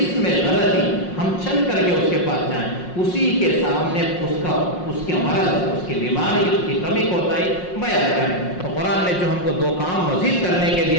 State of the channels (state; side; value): late; right; 5.5 ms